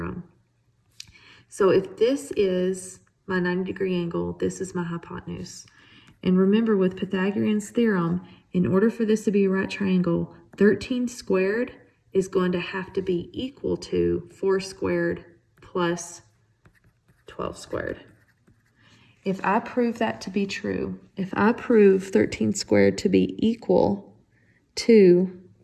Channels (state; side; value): identical; both; correlation 1.00